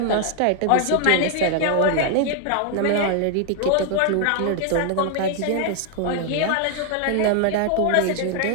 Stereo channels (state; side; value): different; both; correlation 0.00